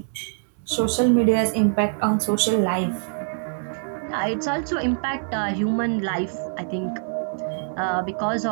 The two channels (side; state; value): left; silent; 62 dB below the other